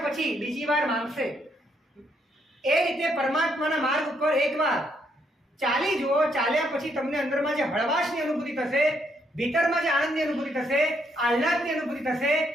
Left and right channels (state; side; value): normal; both; correlation 0.73